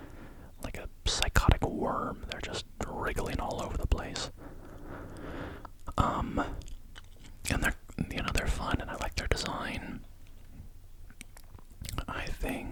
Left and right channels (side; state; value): both; identical; correlation 1.00